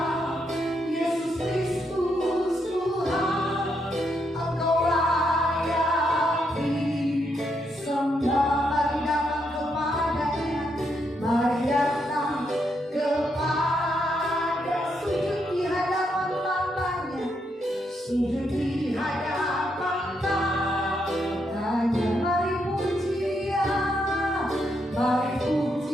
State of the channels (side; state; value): both; normal; correlation 0.79